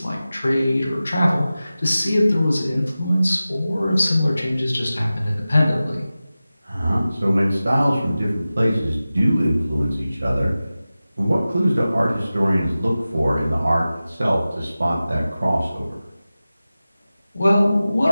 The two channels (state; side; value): inverted; both; correlation -0.96